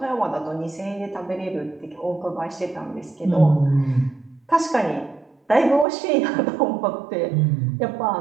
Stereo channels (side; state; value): left; drops out; at 5.9 s